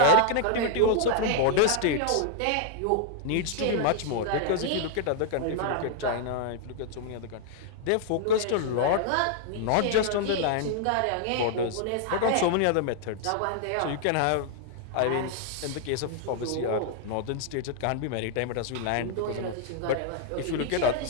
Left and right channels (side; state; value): both; different; correlation -0.01